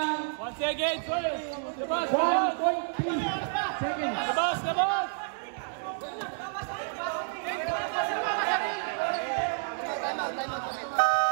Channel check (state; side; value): silent; left; 58 dB below the other